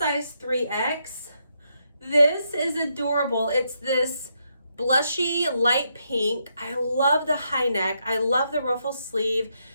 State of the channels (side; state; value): both; inverted; correlation -0.79